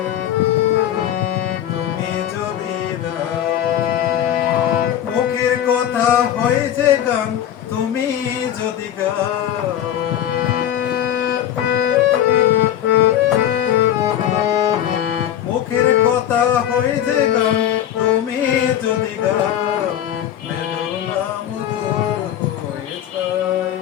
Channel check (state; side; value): quieter; right; 10.9 dB